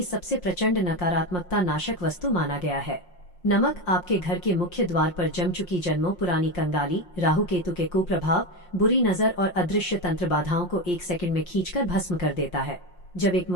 सबसे प्रचंड नकारात्मकता नाशक वस्तु माना गया है। नमक आपके घर के मुख्य द्वार पर जम चुकी जन्मों पुरानी कंगाली, राहु केतु के कुप्रभाव, बुरी नजर और अदृश्य तंत्र बाधाओं को 1 सेकंड में खींचकर भस्म कर देता है। जब एक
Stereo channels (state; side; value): late; right; 5.6 ms